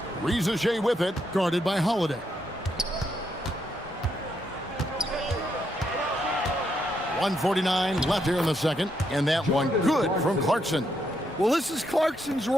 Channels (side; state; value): both; normal; correlation 0.78